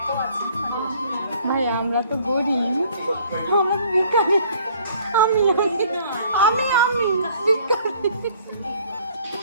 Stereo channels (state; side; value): inverted; both; correlation -0.57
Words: আছে। ভাই আমরা তো গরিব, আমরা তো ভিখারি। আমি আমি আমি আমি ভিখারি।